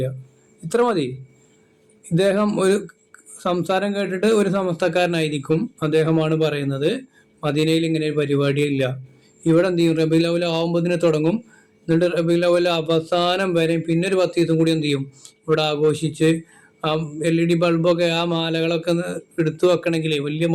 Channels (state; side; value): identical; both; correlation 1.00